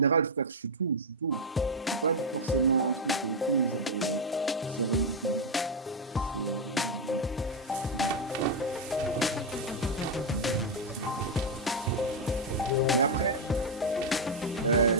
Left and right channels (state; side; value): normal; both; correlation 0.01